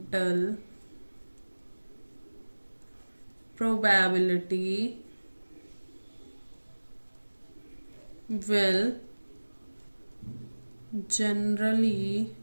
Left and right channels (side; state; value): both; inverted; correlation -1.00